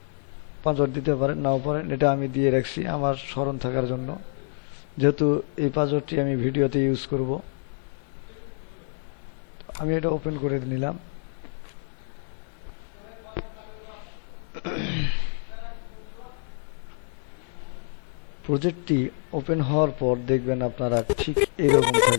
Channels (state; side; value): silent; right; 60 dB below the other